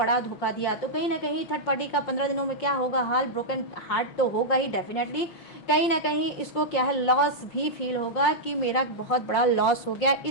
धोखा दिया। तो कहीं ना कहीं थर्ड पार्टी का 15 दिनों में क्या होगा हाल, ब्रोकन हार्ट तो होगा ही डेफिनेटली। कहीं ना कहीं इसको क्या है, लॉस भी फील होगा कि मेरा बहुत बड़ा लॉस हो गया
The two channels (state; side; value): late; right; 5.6 ms